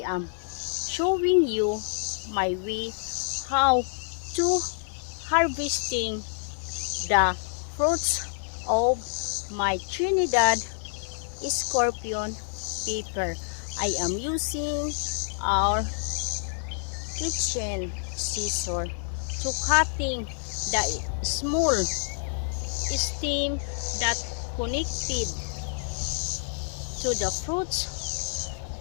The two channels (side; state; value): right; silent; digital silence